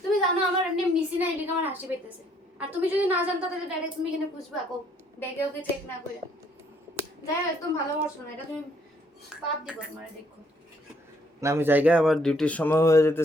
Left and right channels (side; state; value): both; normal; correlation 0.66